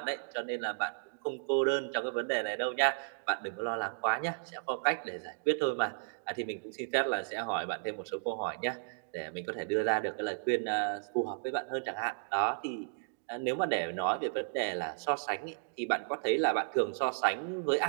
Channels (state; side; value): silent; left; digital silence